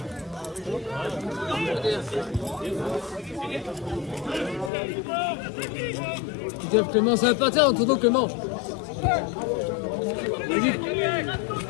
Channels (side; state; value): right; drops out; at 4.7 s